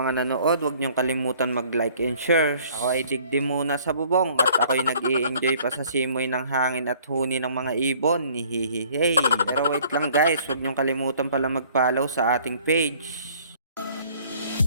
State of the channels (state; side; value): inverted; both; correlation -0.56